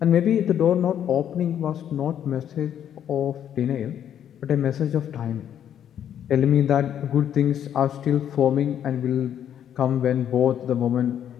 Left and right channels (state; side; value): quieter; right; 9.8 dB